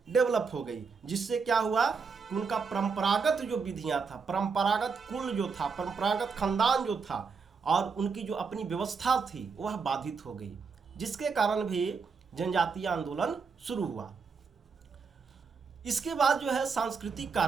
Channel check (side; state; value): left; quieter; 5.2 dB